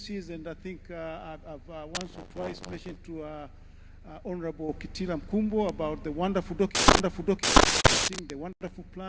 and I think I've once or twice mentioned to Honorable Kitila Mkumbo about the wonderful documenting, the wonderful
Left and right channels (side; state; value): both; identical; correlation 1.00